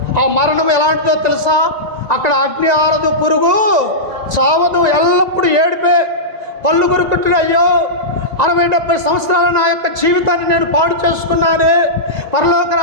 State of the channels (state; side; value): late; left; 1.9 ms